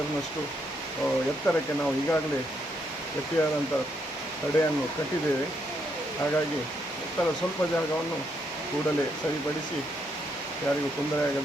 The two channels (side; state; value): both; normal; correlation 0.76